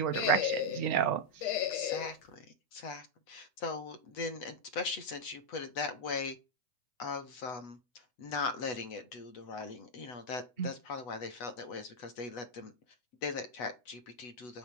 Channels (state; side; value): late; right; 8.1 ms